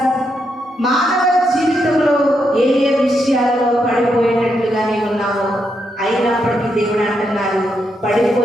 మానవ జీవితంలో ఏ ఏ విషయాల్లో పడిపోయేటట్లుగా నీవు ఉన్నావో, అయినప్పటికీ దేవుడు అంటున్నారు,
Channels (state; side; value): normal; both; correlation 0.81